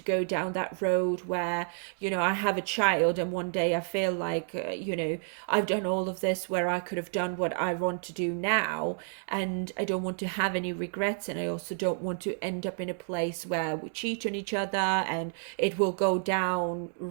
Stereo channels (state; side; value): silent; left; 58 dB below the other